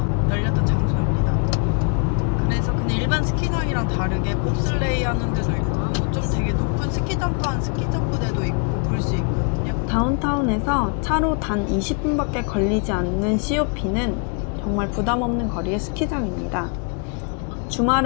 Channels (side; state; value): right; quieter; 38.3 dB